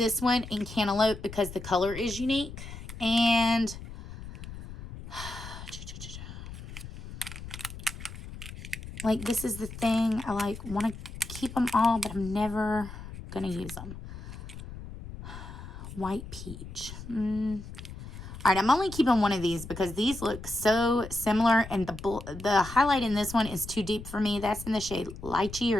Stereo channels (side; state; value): left; noise; rumble, 12 dB below the sound